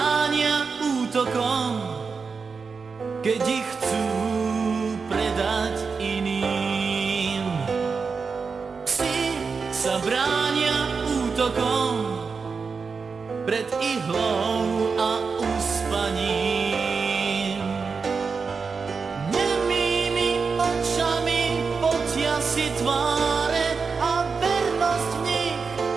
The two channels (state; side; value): quieter; left; 5.1 dB